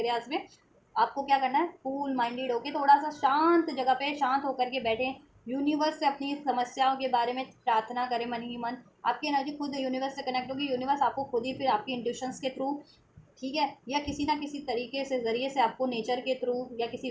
में, आपको क्या करना है, कूल माइंडेड होके थोड़ा सा शांत जगह पे शांत होकर के बैठे, यूनिवर्स से अपनी समस्याओं के बारे में प्रार्थना करें मन ही मन। आपकी एनर्जी खुद यूनिवर्स से कनेक्ट होगी, यूनिवर्स आपको खुद ही फिर आपकी इंट्यूशंस के थ्रू, ठीक है, या किसी ना किसी तरीके से ज़रिए से आपको नेचर के थ्रू या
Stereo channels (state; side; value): identical; both; correlation 1.00